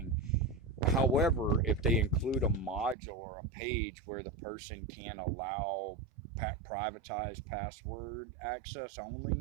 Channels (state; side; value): drops out; left; at 3.0 s